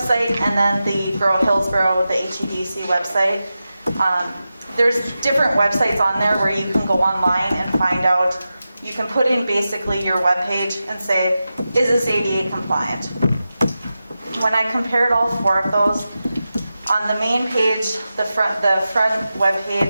and then the Grow Hillsborough, the HEDC website. There's different websites on there where you can go online and find out. You can put in basically your webpage and say, is this ADA compliant? When I compared all 4 of those, on the main page, the front web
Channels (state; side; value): inverted; both; correlation -0.92